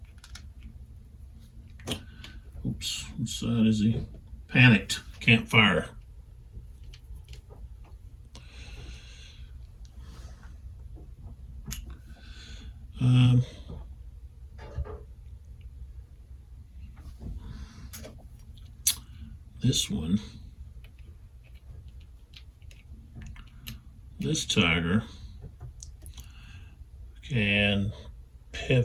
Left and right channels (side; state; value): both; identical; correlation 1.00